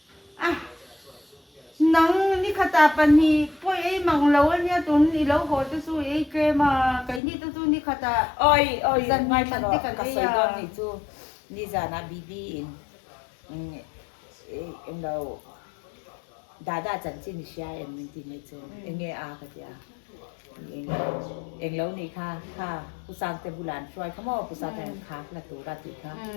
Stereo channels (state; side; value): drops out; right; at 7.2 s